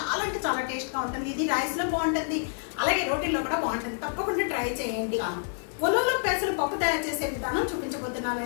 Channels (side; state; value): right; silent; digital silence